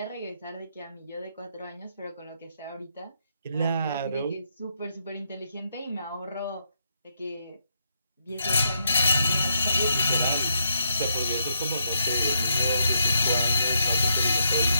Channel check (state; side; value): inverted; both; correlation -0.78